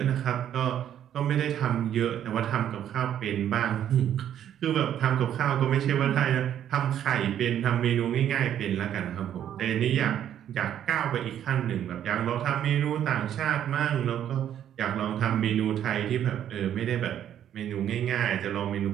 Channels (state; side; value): quieter; left; 10.3 dB